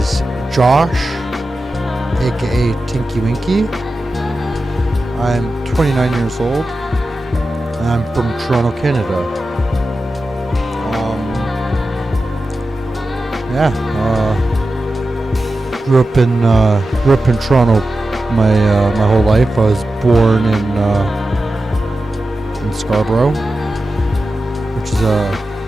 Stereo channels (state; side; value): normal; both; correlation 0.92